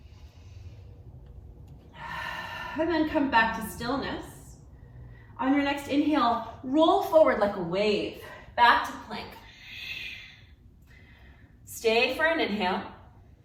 And then come back to stillness. On your next inhale, roll forward like a wave. Back to plank. Stay for an inhale.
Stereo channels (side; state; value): both; identical; correlation 1.00